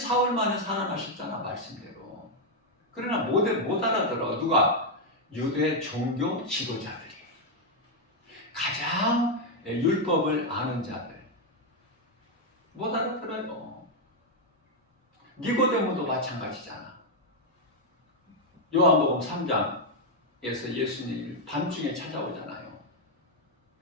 만에 살아나셨잖아. 말씀대로. 그러나 못 알아들어. 누가? 유대 종교 지도자들이. 가장 율법을 아는 자들. 못 알아들어요. 니고데모도 마찬가지잖아. 요한복음 3장에서 예수님이 밤중에 찾아오잖아요.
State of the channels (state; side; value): normal; both; correlation 0.01